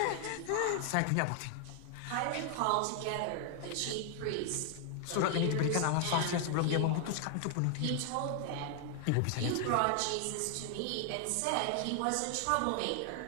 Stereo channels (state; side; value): different; both; correlation 0.00